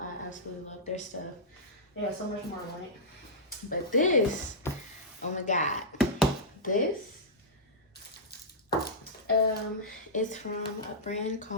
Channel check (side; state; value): both; normal; correlation -0.10